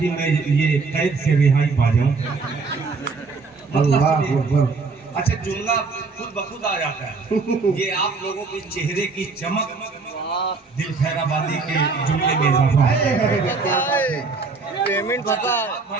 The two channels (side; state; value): left; quieter; 4.3 dB